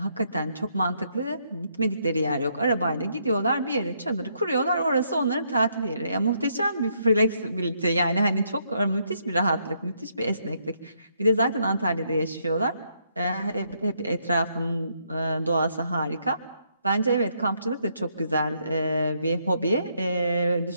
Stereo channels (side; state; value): both; inverted; correlation -0.74